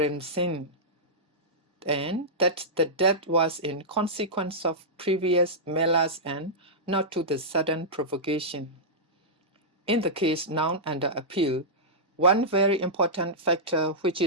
Singh, and that the death was in consequence of previous melas and not to the sudden provocation. In the case now under appeal, one very important factor which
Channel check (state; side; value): normal; both; correlation -0.12